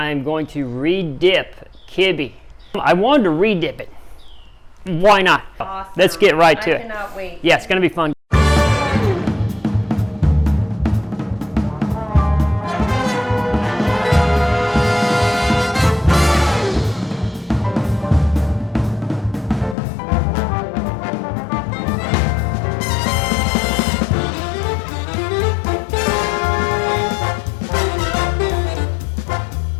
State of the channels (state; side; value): drops out; right; at 19.8 s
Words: going to re-dip kibbe. I wanted to re-dip it. Why not? Awesome. Let's get right to it. I cannot wait. Yeah, it's going to be fun.